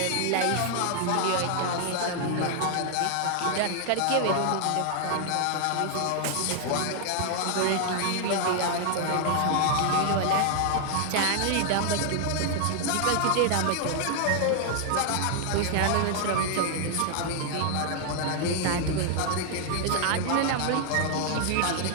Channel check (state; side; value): different; both; correlation 0.00